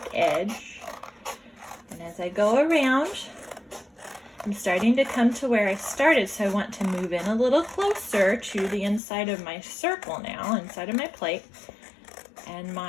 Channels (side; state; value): right; drops out; at 9.0 s